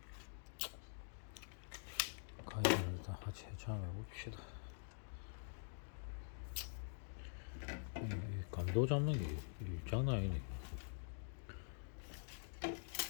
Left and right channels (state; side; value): silent; right; digital silence